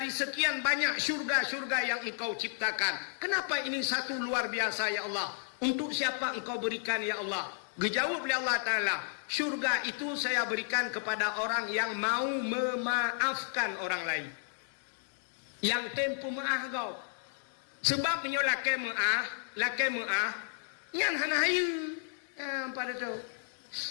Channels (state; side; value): silent; right; digital silence